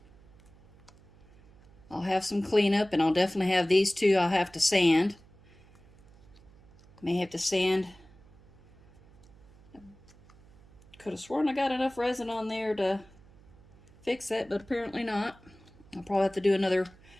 I'll have some cleanup, and I'll definitely have these two I'll have to sand. May have to sand. Could have sworn I got enough resin on there to fix that, but apparently not. I'll probably have to do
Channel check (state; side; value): noise; right; hum, 25 dB below the sound